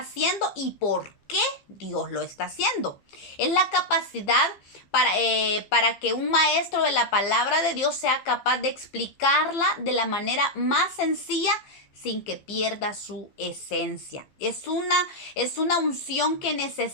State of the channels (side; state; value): right; late; 15 ms